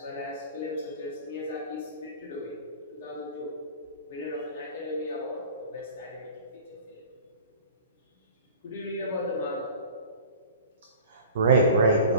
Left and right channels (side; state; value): both; inverted; correlation -0.41